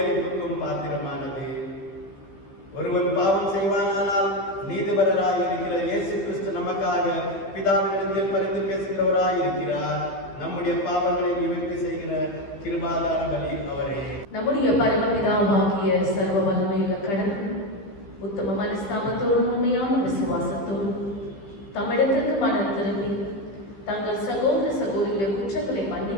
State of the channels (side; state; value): right; late; 15 ms